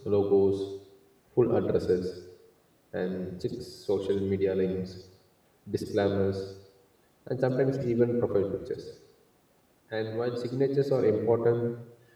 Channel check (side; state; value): both; identical; correlation 1.00